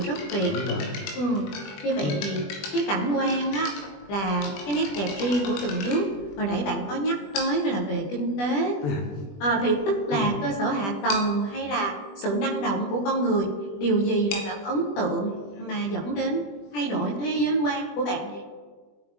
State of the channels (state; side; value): late; right; 20 ms